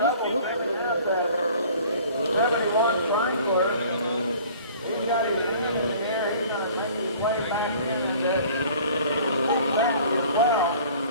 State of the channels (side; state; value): both; inverted; correlation -0.49